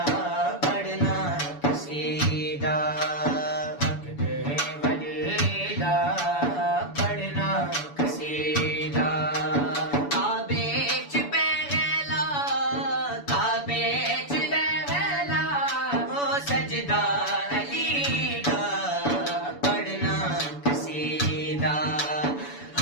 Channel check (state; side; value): late; right; 7.0 ms